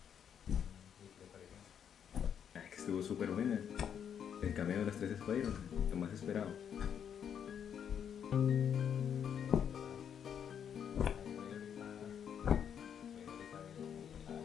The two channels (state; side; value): quieter; right; 8.3 dB